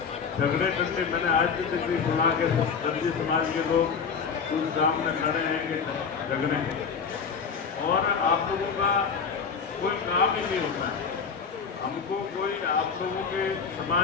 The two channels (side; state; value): right; quieter; 6.0 dB